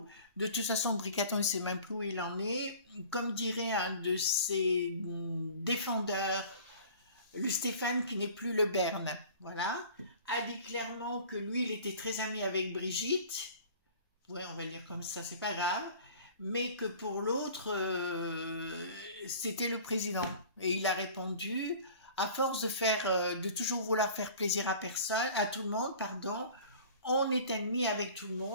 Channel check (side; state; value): both; inverted; correlation -0.45